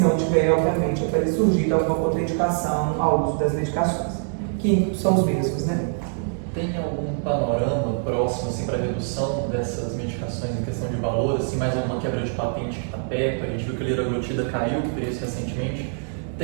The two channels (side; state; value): left; silent; 63 dB below the other